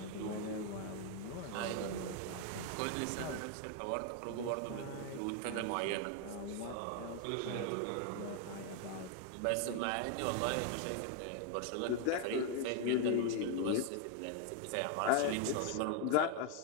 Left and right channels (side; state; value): both; different; correlation 0.00